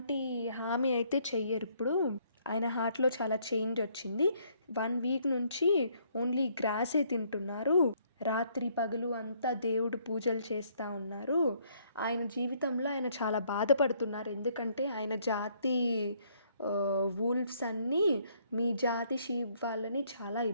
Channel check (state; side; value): inverted; both; correlation -0.67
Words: హామీ అయితే చెయ్యరు. ఇప్పుడు ఆయన హార్ట్లో చాలా చేంజ్ వచ్చింది. 1 వీక్ నుంచి ఓన్లీ గ్రాసే తింటున్నారు. రాత్రి పగలు అంతా దేవుడు పూజలు చేస్తూ ఉన్నారు. ఆయన జీవితంలో ఆయన చాలా బాధపడుతున్నారు. ఎందుకంటే ఆయన జాతి వూల్ఫ్స్ అన్నీ మీ జాతి షీప్ వాళ్ళని చాలా